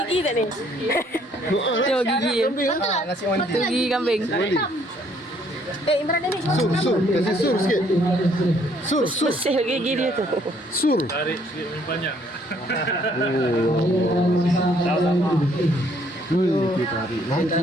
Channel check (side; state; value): both; normal; correlation 0.65